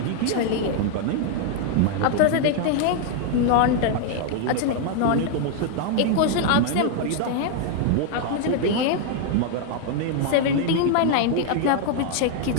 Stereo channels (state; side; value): different; both; correlation 0.00